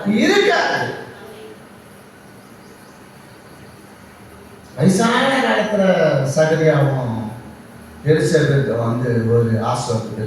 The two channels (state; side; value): identical; both; correlation 1.00